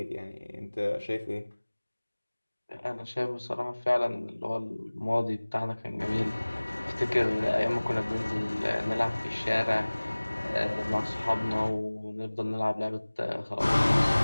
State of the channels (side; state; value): both; inverted; correlation -1.00